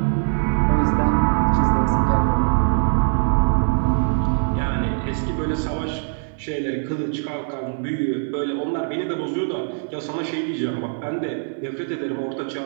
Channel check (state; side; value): silent; left; digital silence